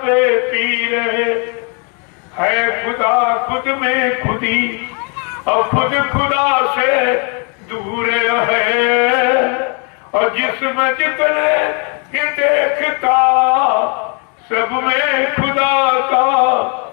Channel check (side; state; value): right; quieter; 36.7 dB